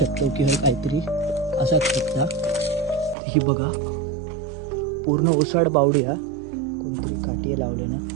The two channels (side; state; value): left; drops out; at 3.2 s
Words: की हे काहीतरी असाच शकता. ही बघा पूर्ण ओसाड बावडी आहे. कोणतरी काठी लावले ना.